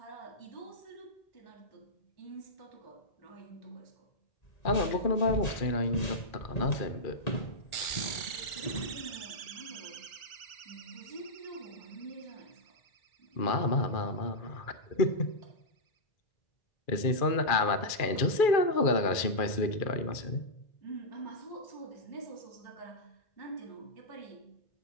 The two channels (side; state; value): right; late; 2.4 ms